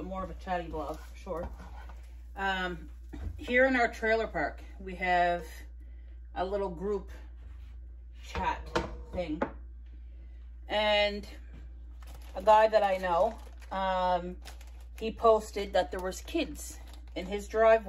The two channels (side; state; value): both; identical; correlation 1.00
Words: more of a chatty vlog, for sure. Here in our trailer park, we have a little group chat thing. And a guy that I know, he posted that there was kids in his